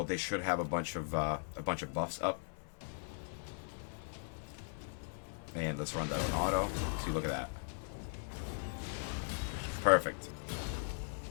they should have a bunch of buffs up. And let's run that on auto. See, look at that. Perfect.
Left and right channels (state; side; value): silent; right; 52 dB below the other